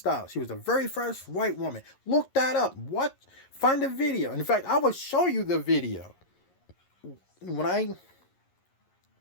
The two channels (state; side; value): late; right; 11 ms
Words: She was the very first white woman. Look that up. What? Find the video. In fact, I will show you the video. When I